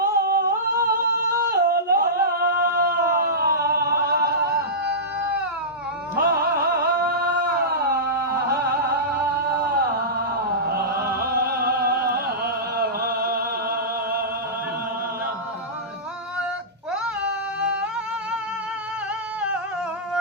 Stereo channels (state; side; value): normal; both; correlation -0.17